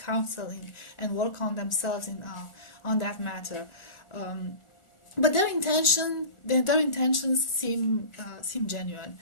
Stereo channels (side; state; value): right; late; 1.4 ms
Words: and work on themselves on that matter. But their intentions seem genuine,